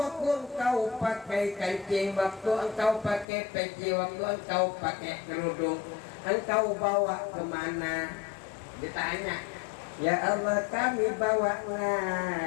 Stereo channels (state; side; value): drops out; right; at 3.2 s